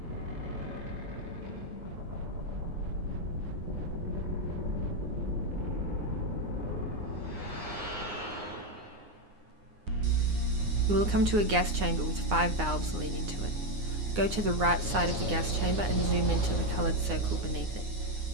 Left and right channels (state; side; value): late; left; 9.7 ms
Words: You will come to a gas chamber with 5 valves leading to it. Go to the right side of the gas chamber and zoom into the coloured circle beneath